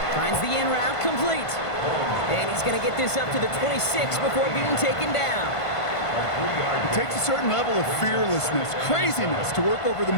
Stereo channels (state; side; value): late; right; 1.5 ms